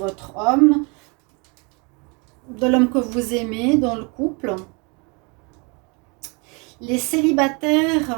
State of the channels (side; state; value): left; quieter; 31.1 dB